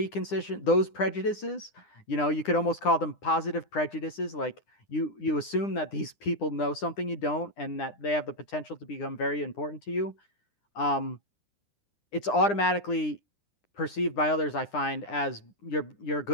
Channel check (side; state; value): right; late; 9.9 ms